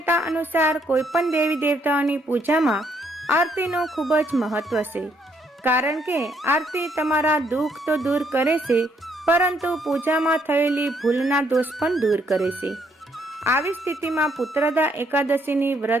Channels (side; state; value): both; normal; correlation 0.71